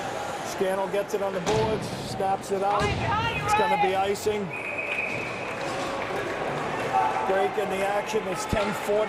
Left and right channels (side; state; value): both; identical; correlation 1.00